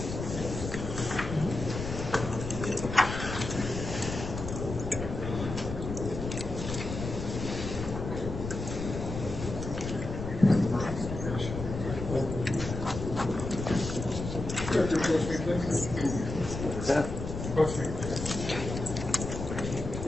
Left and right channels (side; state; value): left; noise; rumble, 6 dB below the sound